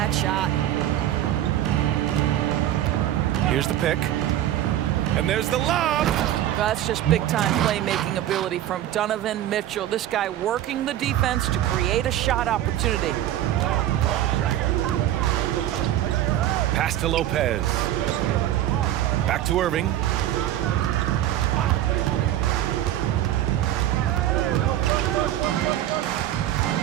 shot. Here's the pick. And there's the lob. That's just big-time playmaking ability from Donovan Mitchell. This guy working the defense to create a shot opportunity. Pass to Lopez. Back to Irving.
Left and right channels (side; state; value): left; quieter; 12.6 dB